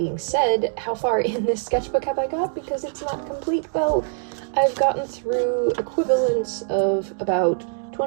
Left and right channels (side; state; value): left; silent; digital silence